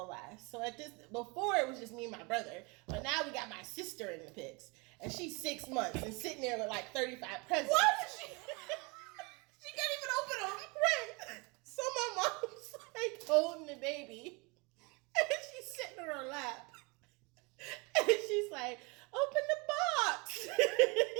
last. So before it was just me and my brother, but now we got my sister in the pics, and she's 6 months and sitting there with like 35 presents. What? She can't even open them. Right. holding the baby. And she's sitting on her lap. And she's like, open the box.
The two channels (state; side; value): quieter; left; 28.9 dB